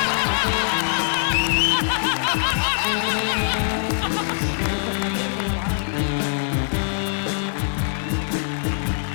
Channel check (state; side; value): silent; right; digital silence